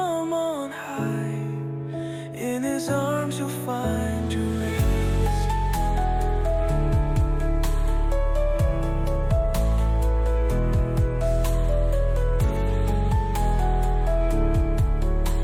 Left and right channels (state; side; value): identical; both; correlation 1.00